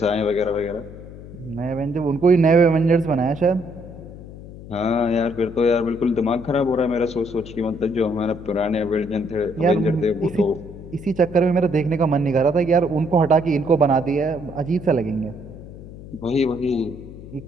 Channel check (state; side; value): noise; left; hum, 15 dB below the sound